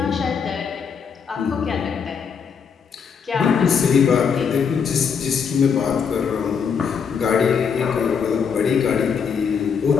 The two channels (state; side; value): quieter; right; 6.5 dB